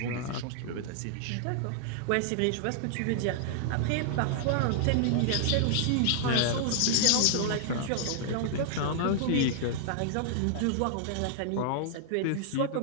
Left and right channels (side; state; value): both; different; correlation -0.01